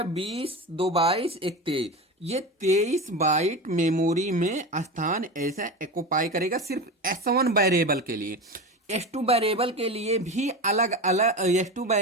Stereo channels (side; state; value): both; normal; correlation 0.25